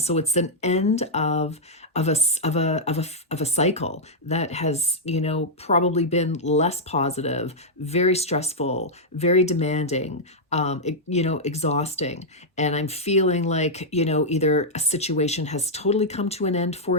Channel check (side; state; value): both; normal; correlation -0.06